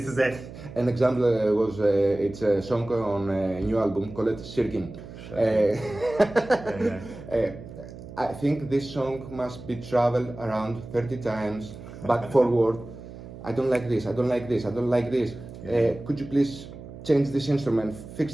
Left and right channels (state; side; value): noise; right; hum, 14 dB below the sound